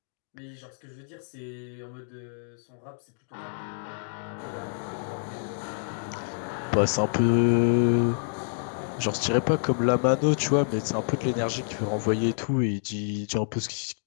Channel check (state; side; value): silent; right; digital silence